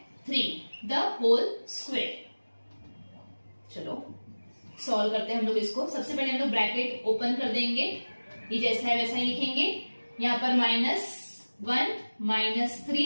3 द होल स्क्वायर। चलो सॉल्व करते हैं हम लोग इसको। सबसे पहले हम लोग ब्रैकेट ओपन कर देंगे, ये जैसा है वैसा ही लिखेंगे, यहाँ पर -1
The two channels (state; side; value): inverted; both; correlation -1.00